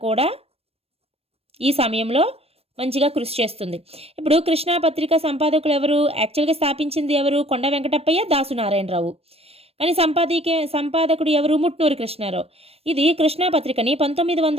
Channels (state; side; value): late; left; 0.29 ms